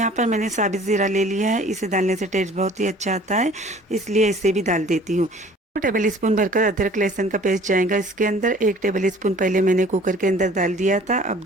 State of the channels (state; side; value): normal; both; correlation 0.50